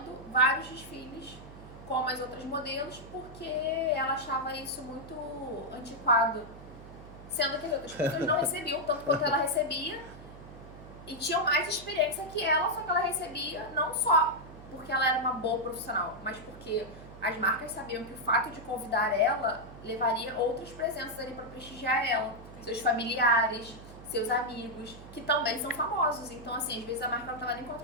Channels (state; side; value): noise; right; hum, 16 dB below the sound